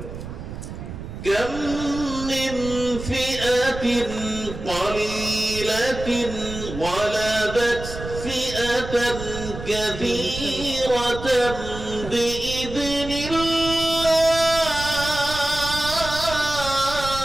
كم من فئة قليلة غلبت فئة كثيرة بإذن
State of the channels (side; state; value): right; noise; rumble, 10 dB below the sound